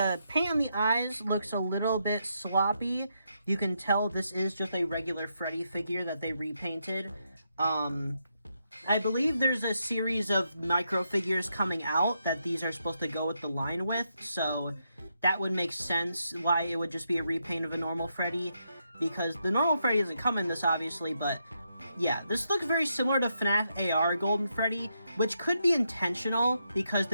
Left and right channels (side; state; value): both; inverted; correlation -0.81